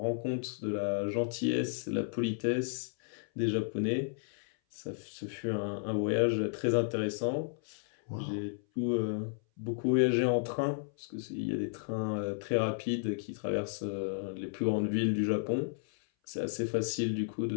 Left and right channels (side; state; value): right; silent; 56 dB below the other